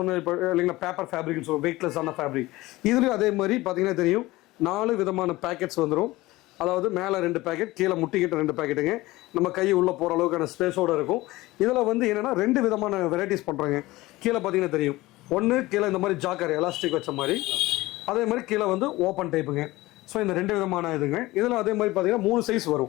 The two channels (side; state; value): right; quieter; 19.2 dB